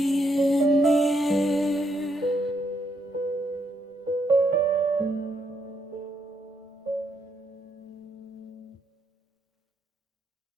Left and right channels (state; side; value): normal; both; correlation 0.76